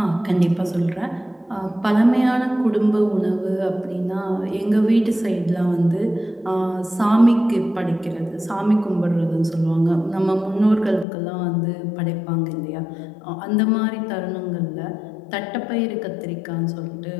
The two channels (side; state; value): right; drops out; at 11.1 s